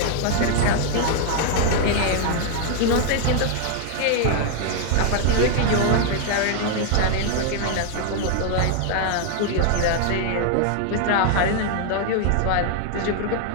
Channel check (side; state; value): both; different; correlation 0.00